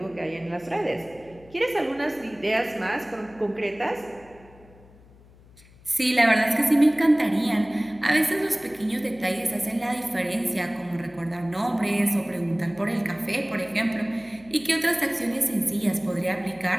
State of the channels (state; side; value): noise; left; hum, 25 dB below the sound